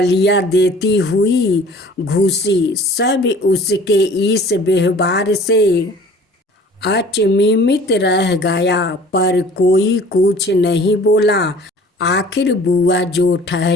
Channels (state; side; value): normal; both; correlation 0.48